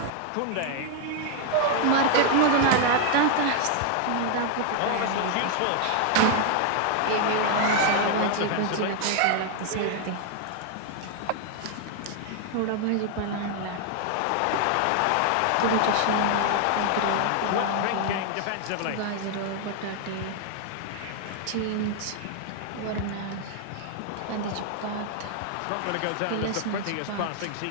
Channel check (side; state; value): both; different; correlation 0.00